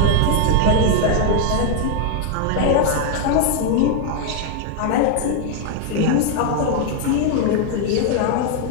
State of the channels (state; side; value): different; both; correlation 0.00